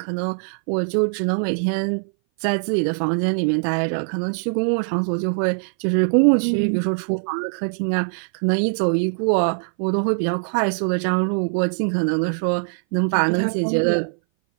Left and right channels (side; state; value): left; silent; 59 dB below the other